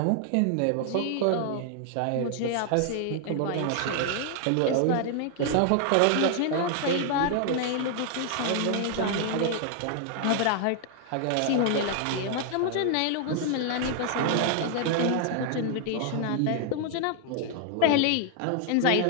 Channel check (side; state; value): both; different; correlation 0.00